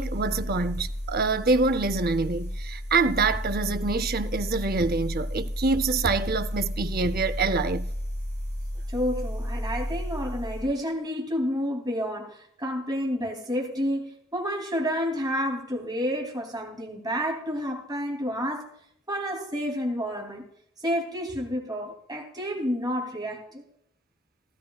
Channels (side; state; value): both; normal; correlation 0.51